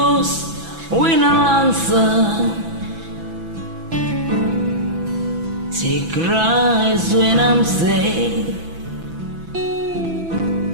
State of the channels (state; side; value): late; left; 6.0 ms